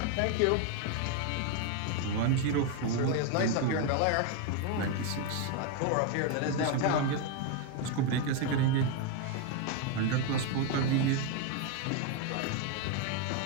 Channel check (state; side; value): different; both; correlation 0.01